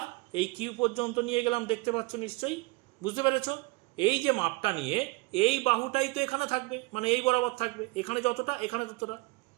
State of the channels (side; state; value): left; quieter; 24.9 dB